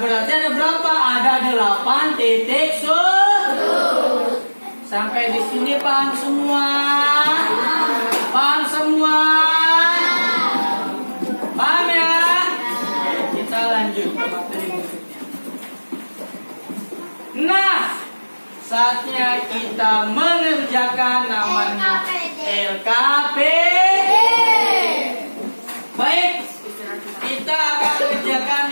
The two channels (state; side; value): inverted; both; correlation -1.00